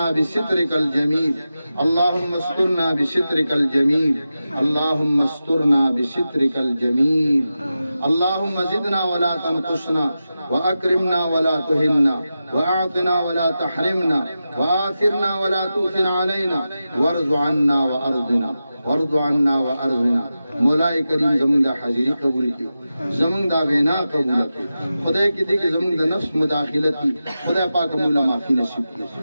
بسترك الجميل اللهم استرنا بسترك الجميل اللهم استرنا بسترك الجميل اللهم زدنا ولا تنقصنا وأكرمنا ولا تهنا وأعطنا ولا تحرمنا وآثرنا ولا تؤثر علينا وارض عنا وأرضنا وارض عنا وأرضنا مولاي کریم زمون دا حاضری قبول کی زمون دا وینا قبول کی خدای کی دی کہ زمون دا نفس مداخلتی خدای پاک مولا معافی نصیب کی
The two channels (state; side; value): inverted; both; correlation -0.92